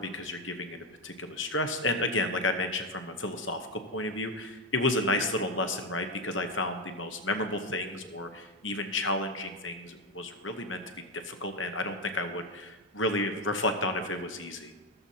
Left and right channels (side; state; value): both; normal; correlation 0.09